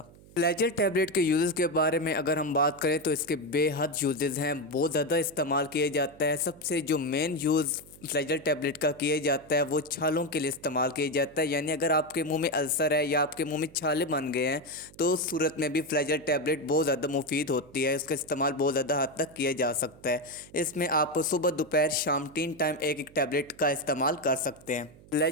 फ्लैजल टैबलेट के यूज़ के बारे में अगर हम बात करें तो इसके बेहद यूजेस हैं, बहुत ज़्यादा इस्तेमाल किया जाता है। सबसे जो मेन यूज़ फ्लैजल टैबलेट का किया जाता है वो छालों के लिए इस्तेमाल किया जाता है। यानी अगर आपके मुंह में अल्सर है या आपके मुंह में छाले बन गए हैं तो उस सूरत में भी फ्लैजल टैबलेट बहुत ज़्यादा मुफीद होती है। इसका इस्तेमाल बहुत ज़्यादा हद तक किया जा सकता है। इसमें आप सुबह दोपहर शाम 3 टाइम एक एक टैबलेट का इस्तेमाल कर सकते हैं।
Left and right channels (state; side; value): noise; right; hum, 23 dB below the sound